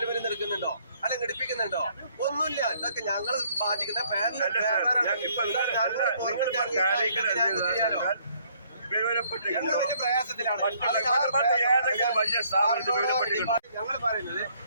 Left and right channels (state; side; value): inverted; both; correlation -0.65